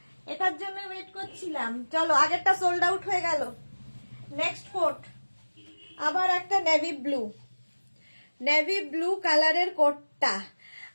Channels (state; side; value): inverted; both; correlation -1.00